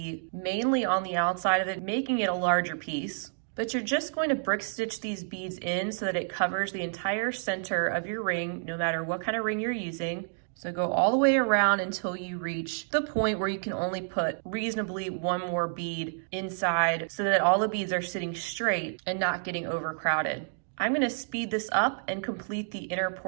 mainly on the outside of it, making it a larger piece. But you're just going to brick stitch these beads in so that it covers the entire center of your ring, no matter what kind of ring you're using. So go all the way around until you reach the point where you can only put reasonably one more bead inside so that all the beads are sitting straight and not getting overcrowded. I'm going to speed this up and complete the inner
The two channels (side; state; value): left; silent; digital silence